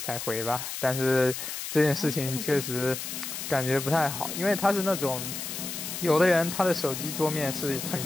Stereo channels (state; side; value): noise; left; hiss, 6 dB below the sound